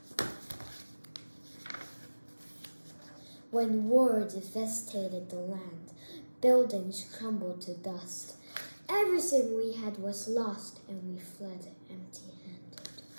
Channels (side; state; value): both; inverted; correlation -1.00